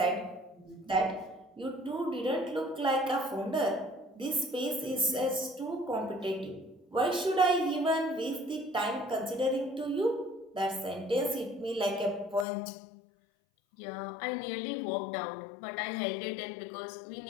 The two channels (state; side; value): drops out; right; at 12.5 s